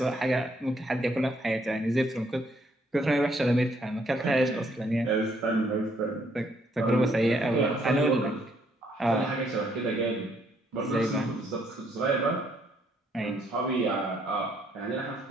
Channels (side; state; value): both; normal; correlation 0.69